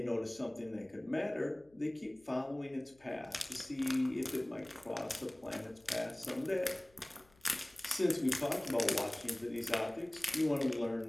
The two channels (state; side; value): noise; left; hum, 30 dB below the sound